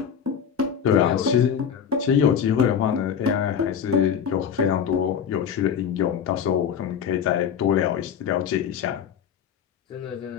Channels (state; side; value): quieter; right; 8.0 dB